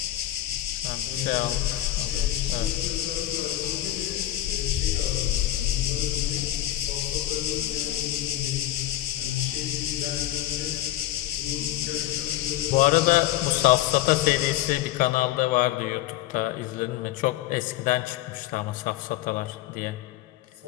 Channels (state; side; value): quieter; right; 14.2 dB